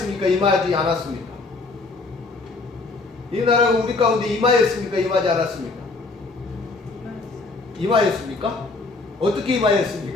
임하지 않았습니까? 이 나라가 우리 가운데 임하였습니까? 임하지 않았습니까? 임하였습니까? 어떻게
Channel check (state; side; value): quieter; right; 3.6 dB